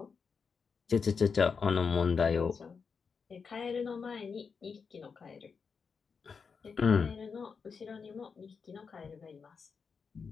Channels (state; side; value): quieter; right; 5.6 dB